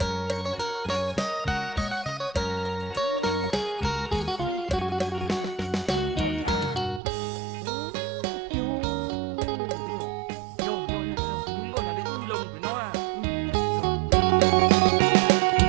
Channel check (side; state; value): left; drops out; at 7.0 s